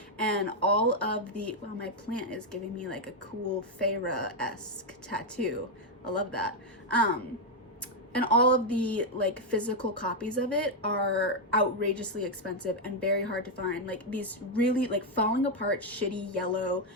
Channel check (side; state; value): both; normal; correlation 0.01